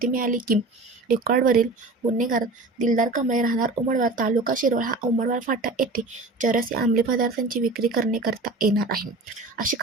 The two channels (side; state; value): left; quieter; 3.2 dB